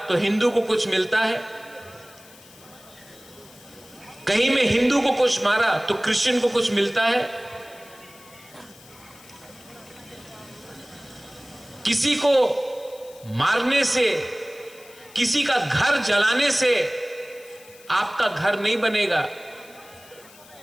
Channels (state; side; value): noise; left; hiss, 23 dB below the sound